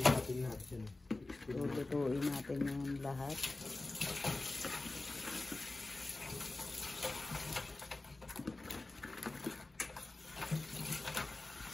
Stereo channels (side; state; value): right; quieter; 3.1 dB